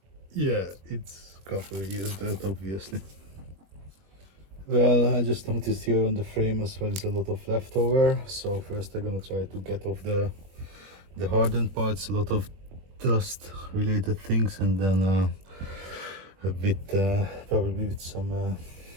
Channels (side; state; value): left; late; 21 ms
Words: Yeah, it's a couple of years dirt, obviously. Well, I just noticed here on the frame as well is a lot of leftover. So first I'm gonna try to get off the hardened parts, a lot of dust related things, and then a bit probably with some